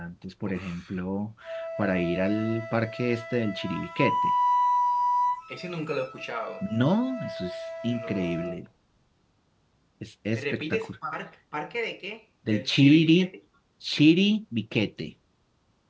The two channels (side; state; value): both; identical; correlation 1.00